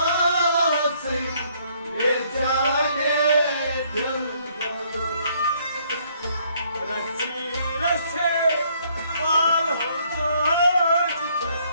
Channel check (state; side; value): inverted; both; correlation -0.66